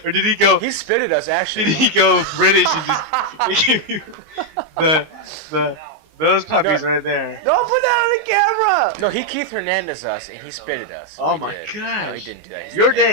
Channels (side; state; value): left; late; 19 ms